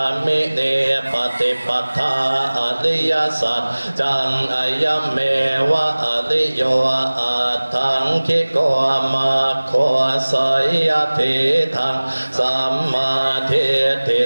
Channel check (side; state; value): both; inverted; correlation -1.00